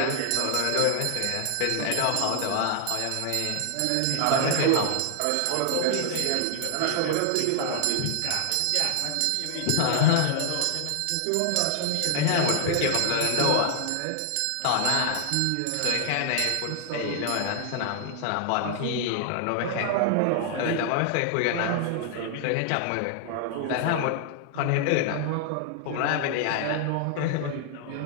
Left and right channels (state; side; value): different; both; correlation 0.00